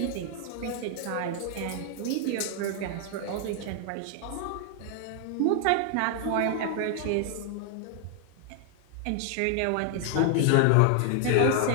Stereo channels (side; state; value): both; different; correlation 0.00